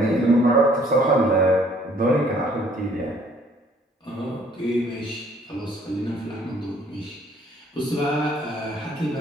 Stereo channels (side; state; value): both; normal; correlation 0.60